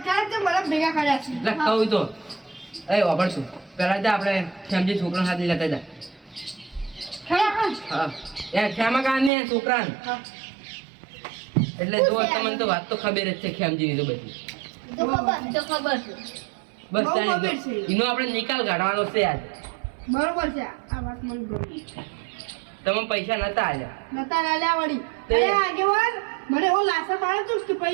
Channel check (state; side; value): drops out; left; at 9.3 s